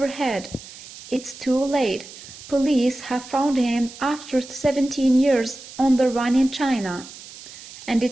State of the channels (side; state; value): right; noise; hiss, 16 dB below the sound